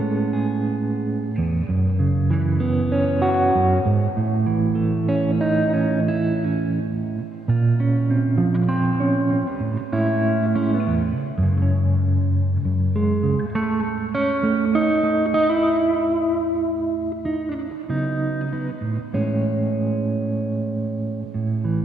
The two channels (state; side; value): normal; both; correlation 0.82